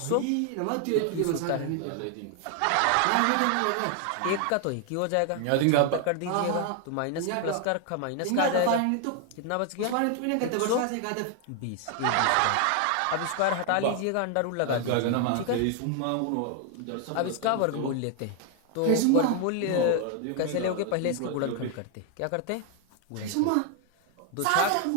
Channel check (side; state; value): both; different; correlation 0.00